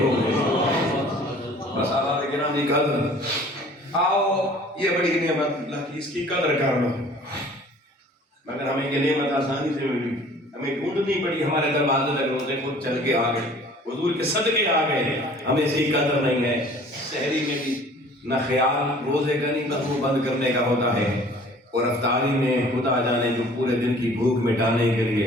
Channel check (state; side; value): normal; both; correlation 0.50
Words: گے۔ بس آباد گرامی قدر آؤ، یہ بڑی نعمت اللہ کی، اس کی قدر کرنا، مگر ہمیں یہ نعمت آسانی سے ملی، ہمیں ڈھونڈنی پڑی، ہمارے دروازے لگے روزے خود چل کے آ گئے، حضور کے صدقے آ گئے، ہمیں اس کی قدر نہیں ہے۔ سحری میں بھی نہ خیال روزے کا نہیں، نہ منہ بند کرنے کا ہوتا ہے، اور افطاری میں خدا جانے جو پورے دن کی بھوک مٹانے کے لیے